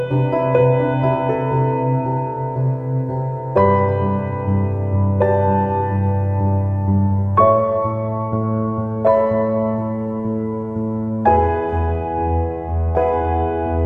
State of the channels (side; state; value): both; identical; correlation 1.00